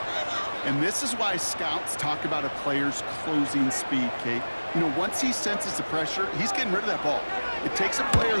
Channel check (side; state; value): both; inverted; correlation -1.00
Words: And this is why scouts talk about a player's closing speed, Kate. You know, once he senses the pressure, he's getting rid of that ball. It takes a player